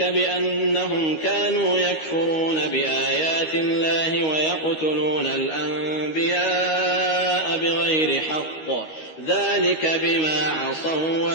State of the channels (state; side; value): late; right; 13 ms